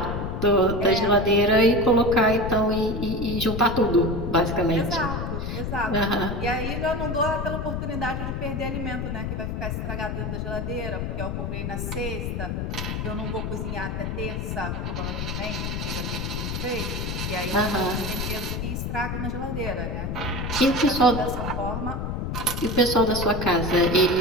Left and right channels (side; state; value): left; noise; rumble, 3 dB below the sound